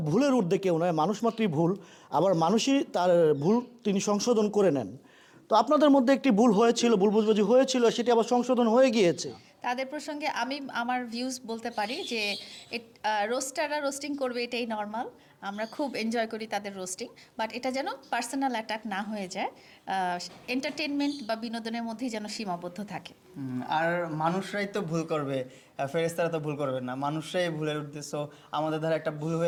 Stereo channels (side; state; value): both; identical; correlation 1.00